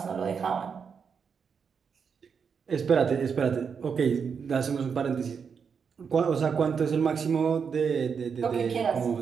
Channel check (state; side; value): quieter; left; 6.3 dB